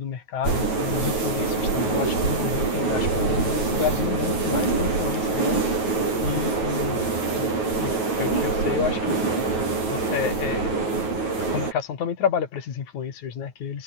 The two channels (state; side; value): late; right; 9.3 ms